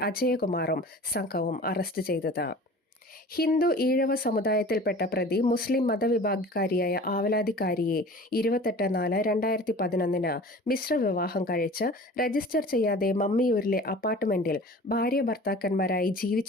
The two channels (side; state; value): both; normal; correlation 0.41